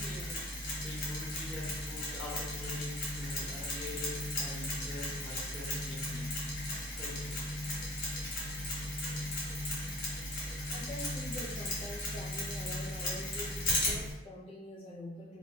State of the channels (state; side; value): normal; both; correlation 0.41